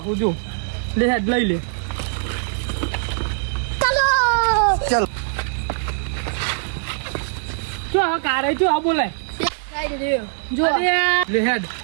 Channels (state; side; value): silent; left; 64 dB below the other